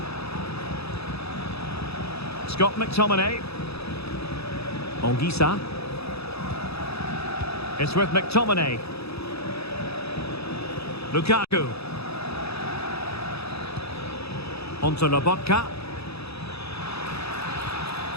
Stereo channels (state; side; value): late; right; 0.78 ms